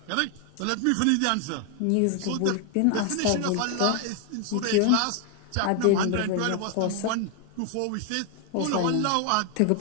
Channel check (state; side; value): different; both; correlation 0.00